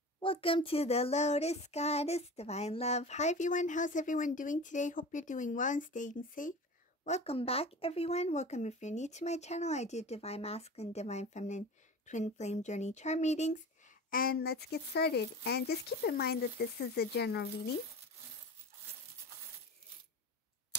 Welcome to the Lotus Goddess Divine Love. Hi everyone, how's everyone doing today? Hope you're doing well and staying safe. Welcome back everyone. Welcome if you're new to my channel. I do Divine Masculine, Divine Feminine, Twin Flame Journey Chart readings. And let's get started. And just keep in mind that this is a general reading.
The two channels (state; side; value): normal; both; correlation 0.34